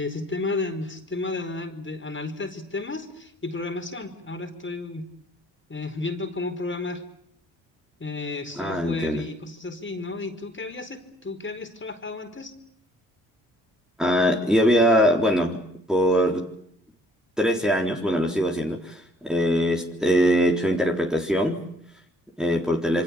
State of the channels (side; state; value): both; normal; correlation 0.60